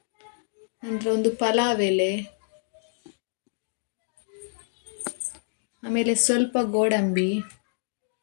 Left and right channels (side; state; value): right; silent; digital silence